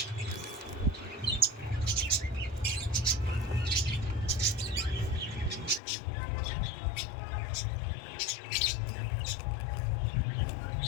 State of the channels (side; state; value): right; drops out; at 5.8 s